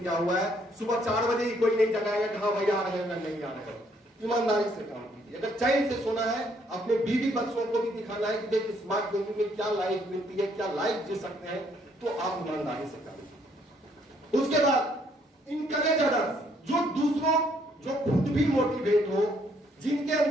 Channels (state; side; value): normal; both; correlation 0.68